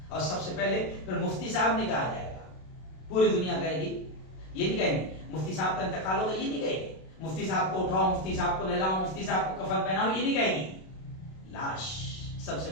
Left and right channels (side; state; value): right; late; 32 ms